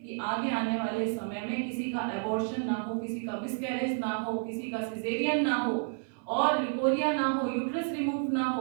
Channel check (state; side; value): silent; left; 57 dB below the other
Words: कि आगे आने वाले समय में किसी का एबॉर्शन ना हो, किसी का मिसकैरेज ना हो, किसी का सिजेरियन ना हो, और ल्यूकोरिया ना हो, यूट्रस रिमूव ना